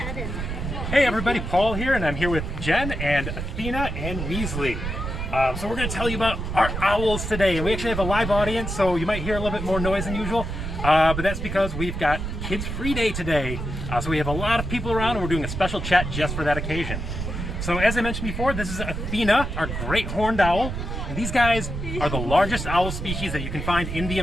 everybody, Paul here, and I'm here with Jen and Athena and Weasley. So we're going to tell you about our owls today, and we actually have a live audience, so you might hear a little bit more noise than usual, but that's because we've got Kids Free Day today. So we have a lot of people around, and we're doing a special chat just for that occasion. So as I mentioned before, this is Athena, our great horned owl. And these guys are the largest owl species that you can find in the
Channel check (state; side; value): noise; right; rumble, 5 dB below the sound